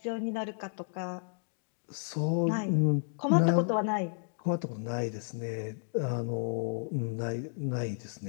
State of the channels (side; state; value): right; silent; digital silence